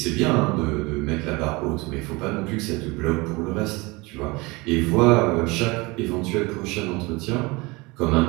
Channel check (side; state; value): left; quieter; 24.5 dB